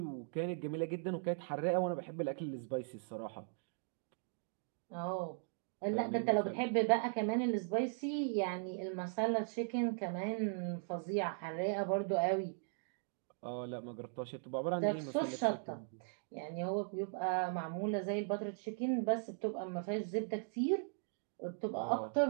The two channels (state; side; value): silent; left; digital silence